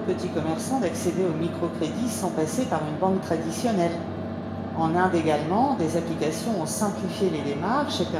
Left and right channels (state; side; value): identical; both; correlation 1.00